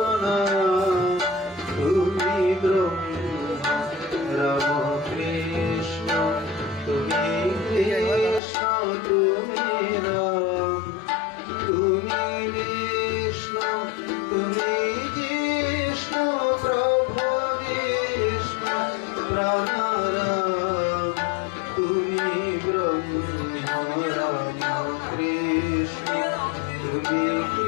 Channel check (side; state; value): right; drops out; at 8.4 s